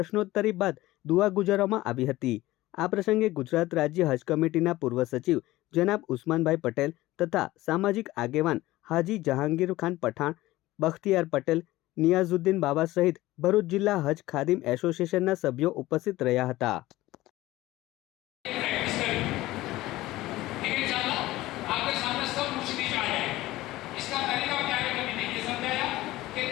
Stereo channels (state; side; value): quieter; right; 17.4 dB